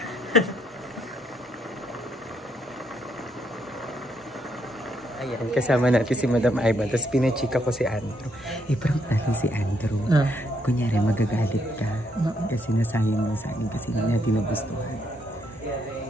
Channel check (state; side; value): normal; both; correlation 0.74